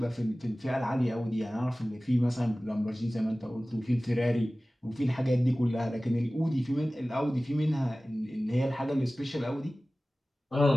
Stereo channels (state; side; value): normal; both; correlation 0.97